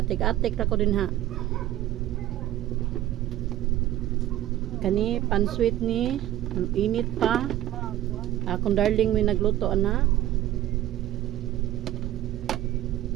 atik-atik ra ko din ha. Kani pansweet ni init pa. Akong darling may nagluto ana.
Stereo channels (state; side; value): quieter; left; 13.7 dB